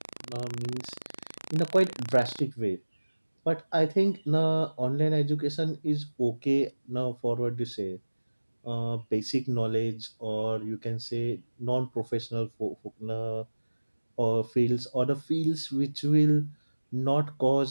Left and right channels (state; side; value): inverted; both; correlation -1.00